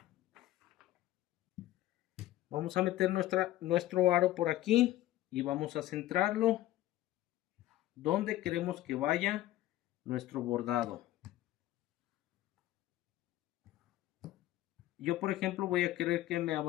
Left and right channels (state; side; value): quieter; right; 15.0 dB